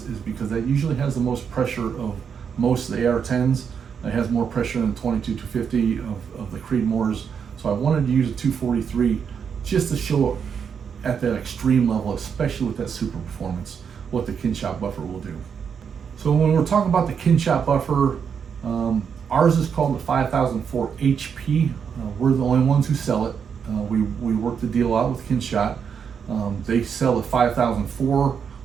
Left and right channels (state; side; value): quieter; left; 7.0 dB